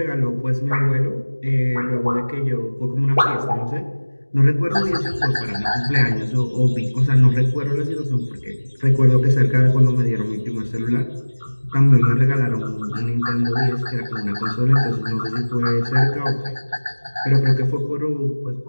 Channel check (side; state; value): both; inverted; correlation -1.00